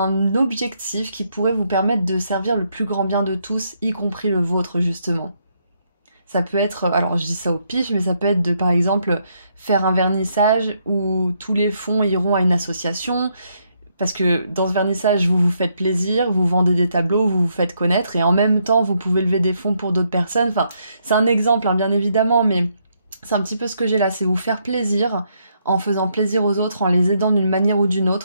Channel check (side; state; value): both; inverted; correlation -0.75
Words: objectif qui pourrait vous permettre de servir le plus grand bien de tous, y compris le vôtre justement. Ça peut être, alors je dis ça au pif, mais ça peut être de par exemple faire un vernissage où tous les fonds iront à une association, parce que dans ce vernissage vous vous faites plaisir, vous vendez des tableaux, vous vous faites connaître, et en même temps vous pouvez lever des fonds pour d'autres personnes. Enfin, c'est un exemple, hein, bien évidemment, mais c'est un petit peu ce que j'ai là, c'est vous faire plaisir en faisant plaisir aux autres, en les aidant d'une manière ou d'une